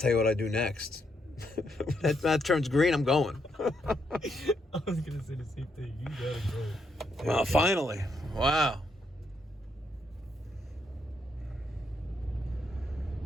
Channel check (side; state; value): both; normal; correlation 0.77